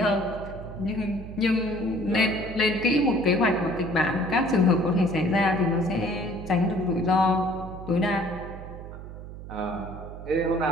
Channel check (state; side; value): noise; right; hum, 12 dB below the sound